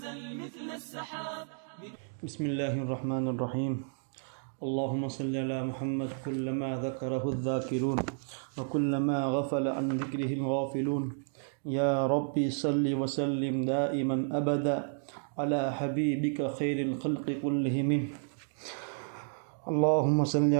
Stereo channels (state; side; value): silent; left; digital silence